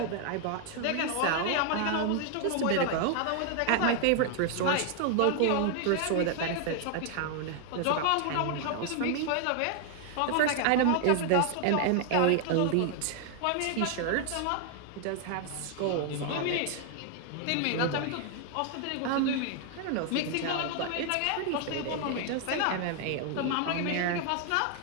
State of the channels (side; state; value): both; different; correlation 0.00